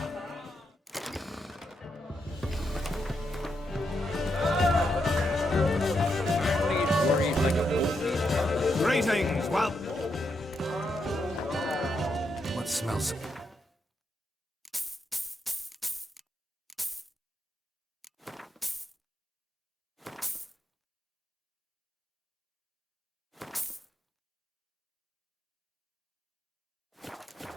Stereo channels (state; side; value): normal; both; correlation 0.81